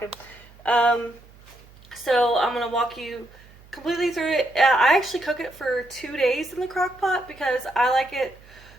So I'm going to walk you completely through it. I actually cook it for 2 days in the crock pot because I like it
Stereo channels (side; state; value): right; noise; hum, 24 dB below the sound